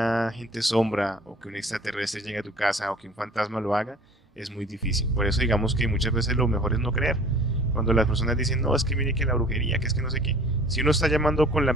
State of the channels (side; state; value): both; normal; correlation 0.48